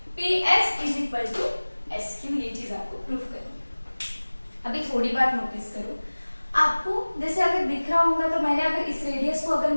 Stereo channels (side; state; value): both; inverted; correlation -1.00